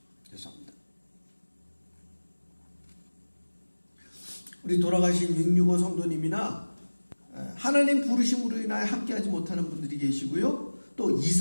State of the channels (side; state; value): both; inverted; correlation -1.00